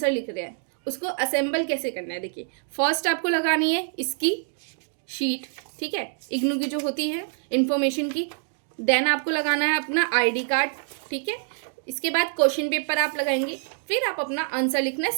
लिख रहे हैं उसको असेंबल कैसे करना है। देखिए, फर्स्ट आपको लगानी है इसकी शीट, ठीक है, इग्नू की जो होती है इंफॉर्मेशन की। देन आपको लगाना है अपना आईडी कार्ड, ठीक है। इसके बाद क्वेश्चन पेपर आप लगाएंगे, फिर आप अपना आंसर लिखना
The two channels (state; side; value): silent; left; 61 dB below the other